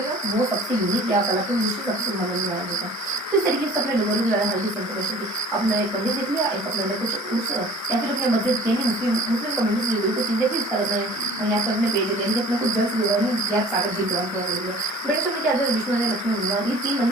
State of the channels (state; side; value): normal; both; correlation 0.47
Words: है वो सबसे यूनिक या कलात्मक दृष्टि सबसे सुंदर मंदिर माना जाता है। तो इस तरीके से अपने डोंगरी के बारे में हल्की सी इन्फॉर्मेशन थी। अपना एक मंदिर देख लिया, एक अपने कुछ उस या फिर अपने मस्जिद मुस्लिम कम्युनिटी से जुड़ी कुछ चीजें थी, इस तरह यहाँ पे अपने पेज दिया अपने कुछ जल से जुड़ा नहीं गैप सागर जी द्वारा थोड़ा दे दिया। ब्रिटिश में क्या था, विष्णु मंदिर लक्ष्मी मंदिर, ये 3